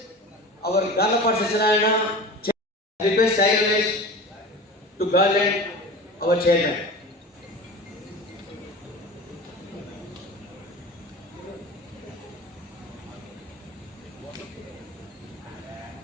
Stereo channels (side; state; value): both; normal; correlation 0.34